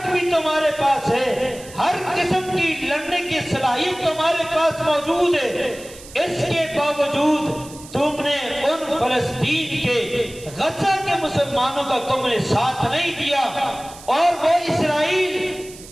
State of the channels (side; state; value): right; noise; hiss, 18 dB below the sound